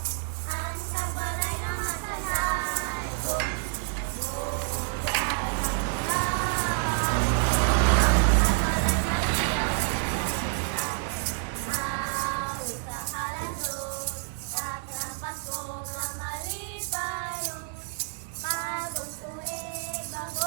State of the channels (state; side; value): silent; left; digital silence